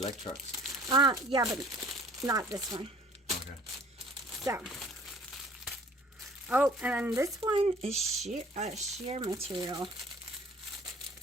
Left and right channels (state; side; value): normal; both; correlation 0.52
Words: trucks. Yeah, but not this one. Okay. So. Oh, and then this one is sheer material.